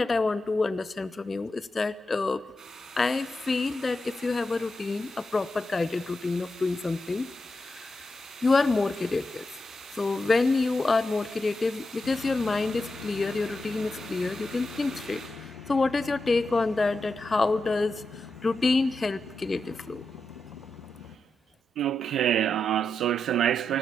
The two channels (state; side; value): normal; both; correlation 0.87